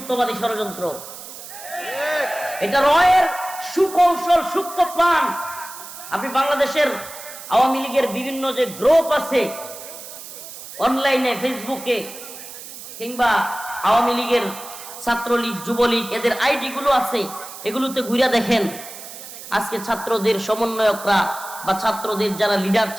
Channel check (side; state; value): right; noise; hiss, 13 dB below the sound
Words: ষড়যন্ত্র, এটা রয়ের সুকৌশল, সূক্ষ্ম প্ল্যান। আপনি বাংলাদেশের আওয়ামী লীগের বিভিন্ন যে গ্রুপ আছে অনলাইনে, ফেসবুকে, কিংবা আওয়ামী লীগের ছাত্রলীগ, যুবলীগ, এদের আইডি গুলো আছে, এগুলোতে ঘুরে দেখেন আজকে ছাত্রদের সমন্বয়করা বা ছাত্রদের যারা লিডার